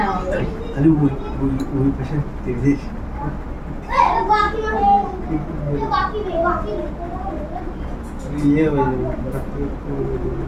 আমার বাড়ি। খালি ওই পাশে দেখিস ইয়ে হয়ে যাবে হঠাৎ করে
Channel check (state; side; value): identical; both; correlation 1.00